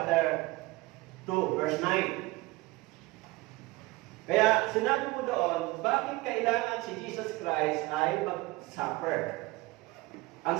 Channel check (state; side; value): quieter; left; 21.6 dB